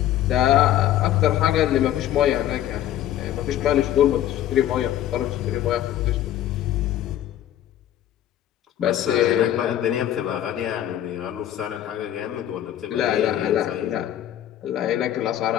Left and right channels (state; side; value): quieter; right; 12.0 dB